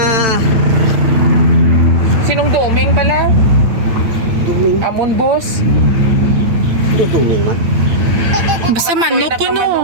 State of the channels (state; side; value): late; left; 9.0 ms